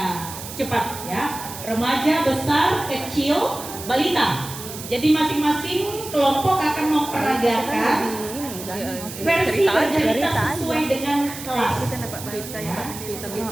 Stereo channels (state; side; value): noise; right; hiss, 11 dB below the sound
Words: cepat ya. Remaja, besar, kecil, balita. Jadi masing-masing kelompok akan memperagakan versi bercerita sesuai dengan kelas. Kita dapat berita yang